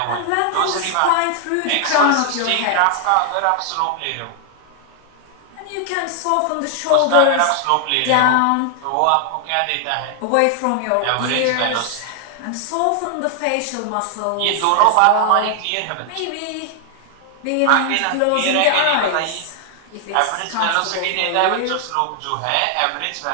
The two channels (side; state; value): both; different; correlation 0.00